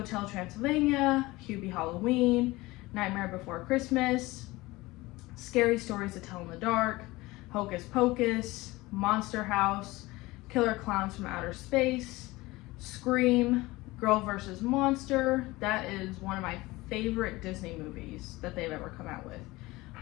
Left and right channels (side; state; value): right; quieter; 20.5 dB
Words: Transylvania, Hubie Halloween, Nightmare Before Christmas, Scary Stories to Tell in the Dark, Hocus Pocus, Monster House, Killer Clowns from Outer Space, Scream, Girl vs. Monster. That is one of my favorite Disney movies that they've ever come out with.